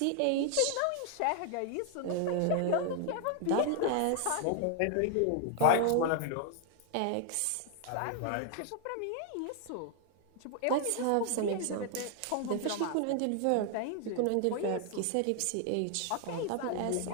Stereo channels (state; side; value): different; both; correlation 0.00